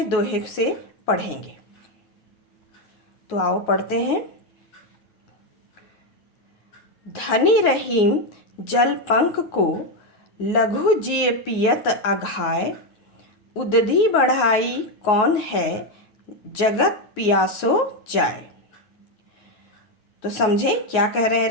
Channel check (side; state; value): right; late; 9.4 ms